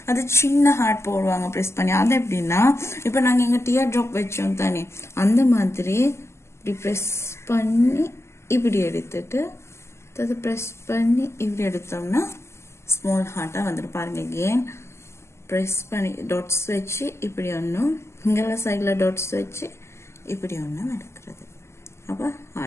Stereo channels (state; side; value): late; right; 0.13 ms